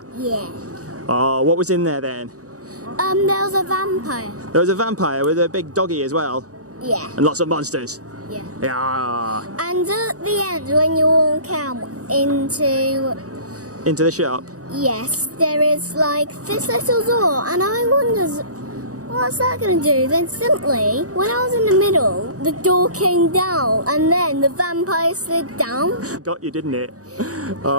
Yeah. Oh, what was in there then? There was a vampire. There was a vampire with a big doggy as well, Yeah. and lots of monsters. Yeah. Yeah. And at the end, when you walk out into, Into the shop. yes, there is like this little door, and I wondered, what's that going to do? Then simply, when I was in the middle, the door came down, and then the vampire slid down. Got you, didn't it?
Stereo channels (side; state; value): left; late; 0.66 ms